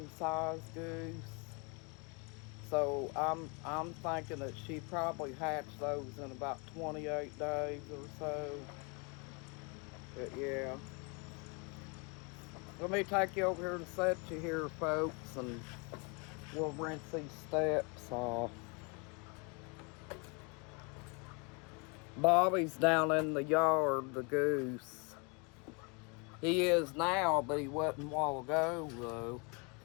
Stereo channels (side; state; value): right; quieter; 32.2 dB